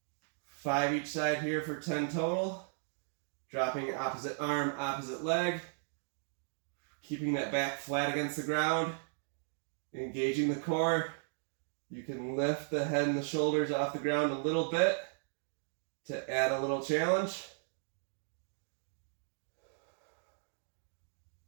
5 each side here for 10 total. Dropping opposite arm, opposite leg. Keeping that back flat against the ground. Engaging the core. You can lift the head and the shoulders off the ground a little bit to add a little challenge.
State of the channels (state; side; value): silent; left; digital silence